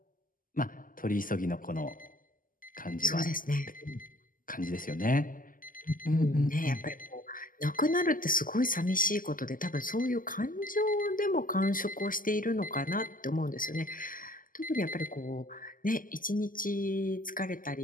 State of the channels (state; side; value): late; right; 0.40 ms